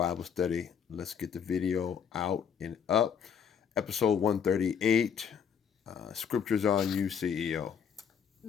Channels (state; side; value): quieter; right; 7.4 dB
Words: study. Let's get the video out and up. Episode 138. Scriptures on you, CEO.